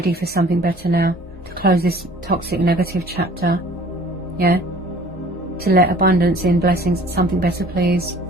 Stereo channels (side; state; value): both; normal; correlation 0.50